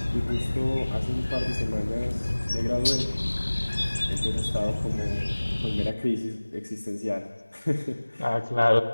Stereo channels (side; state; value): both; inverted; correlation -1.00